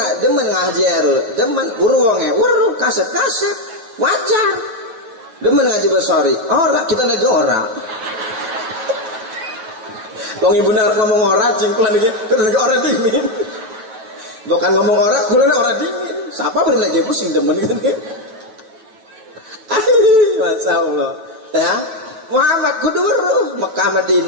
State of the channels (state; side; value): late; left; 9.1 ms